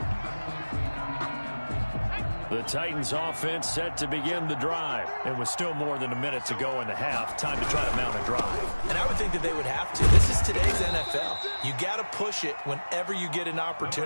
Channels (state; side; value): inverted; both; correlation -1.00